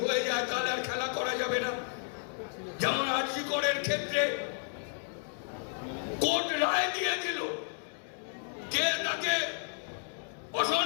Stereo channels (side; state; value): right; silent; 56 dB below the other